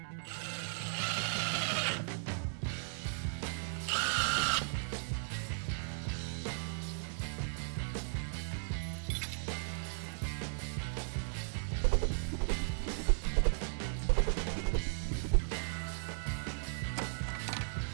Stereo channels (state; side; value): silent; left; 53 dB below the other